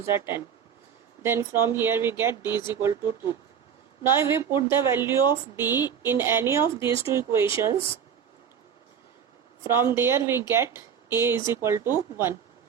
the 10. Then from here we get D is equal to 2. Now if we put the value of D in any of these two equations, from there we get A is equal to 1.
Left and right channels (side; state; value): left; quieter; 7.7 dB